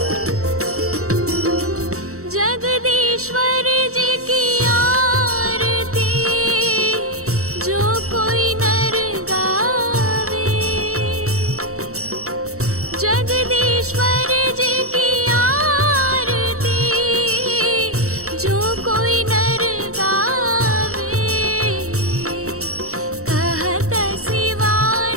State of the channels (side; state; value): left; late; 0.64 ms